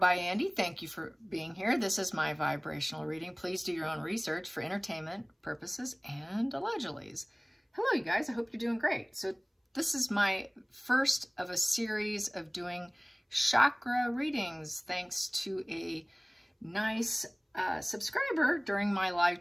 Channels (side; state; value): both; identical; correlation 1.00